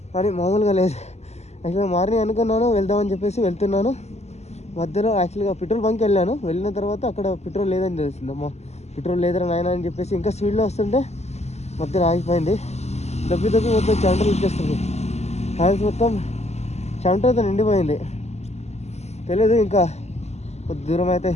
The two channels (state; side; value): late; right; 0.32 ms